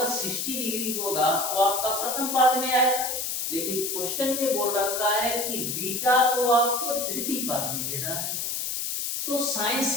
60 डिग्री होगा वो आपका प्रथम पाद में आएगा, लेकिन क्वेश्चन में बोल रखा है कि बीटा को आपको तृतीय पाद में लेना है। तो साइन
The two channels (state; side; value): noise; left; hiss, 2 dB below the sound